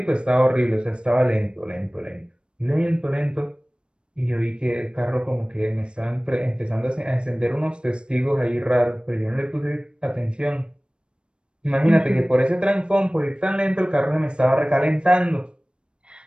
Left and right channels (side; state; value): left; late; 0.055 ms